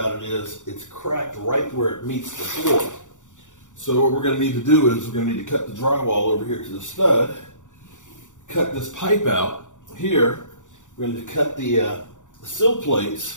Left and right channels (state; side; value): late; right; 0.86 ms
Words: it is it's cracked right where it meets the floor. So what we're going to need to do is we're going to need to cut the drywall over here to the stud, cut this pipe out here. We're going to cut the sill